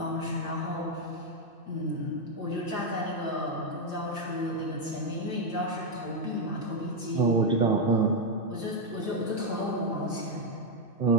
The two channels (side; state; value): right; late; 2.6 ms